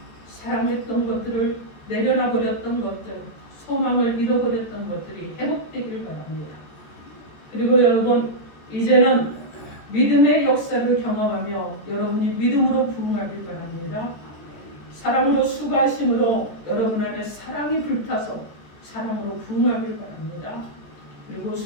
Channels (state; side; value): late; right; 14 ms